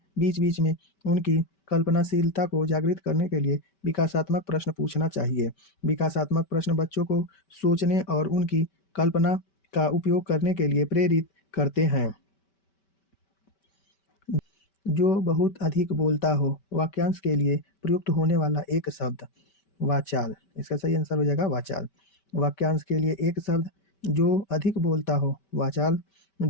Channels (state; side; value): late; right; 5.2 ms